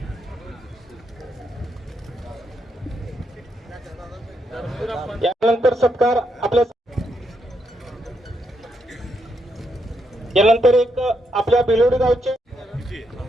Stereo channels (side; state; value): both; normal; correlation 0.79